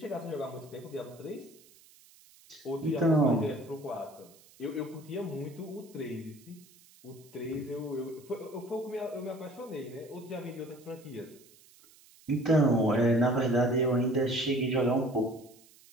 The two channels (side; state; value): right; noise; hiss, 26 dB below the sound